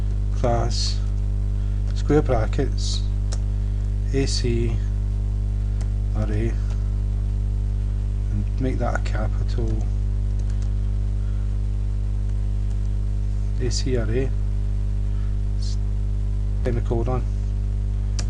class square brackets AC array, and make that a capital AC array, semicolon,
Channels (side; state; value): both; identical; correlation 1.00